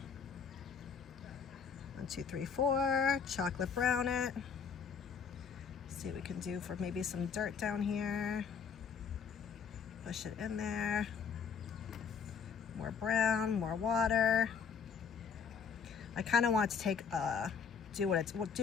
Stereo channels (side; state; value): right; quieter; 6.4 dB